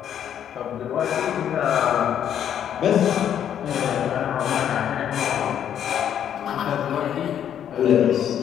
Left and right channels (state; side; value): quieter; right; 9.6 dB